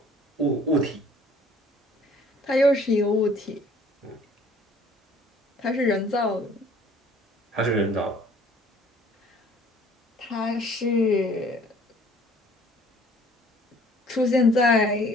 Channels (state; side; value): normal; both; correlation 0.55